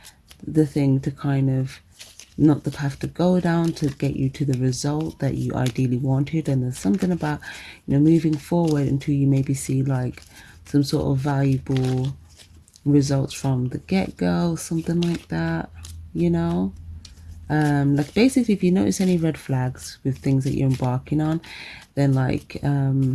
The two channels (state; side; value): identical; both; correlation 1.00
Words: the thing to kind of, not the path to go down to get you to the result that you ideally wanted. And there's something about, you know, moving forward until you maybe see like some sort of valuable results from the get-go, something like that, you know. Like basically, if you notice any red flags with things that you're embarking on, then like